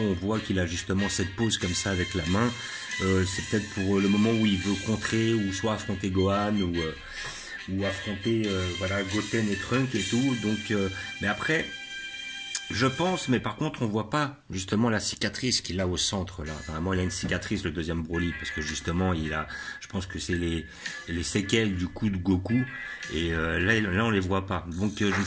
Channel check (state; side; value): identical; both; correlation 1.00